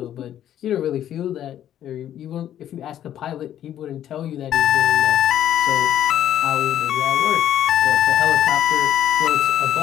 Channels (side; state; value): right; quieter; 11.1 dB